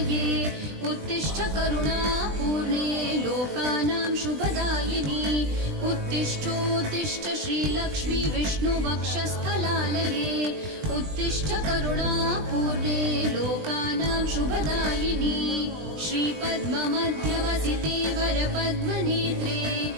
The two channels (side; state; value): left; late; 20 ms